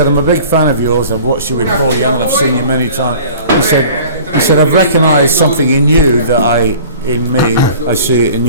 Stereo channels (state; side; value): inverted; both; correlation -0.45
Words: I'm a big fan of yours. I've watched you with Paul Young. I've seen you many times. He said, I've recognised something in you that in me, I see it in